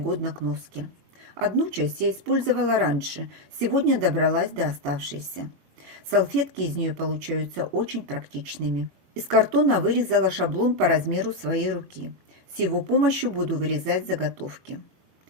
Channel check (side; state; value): left; late; 21 ms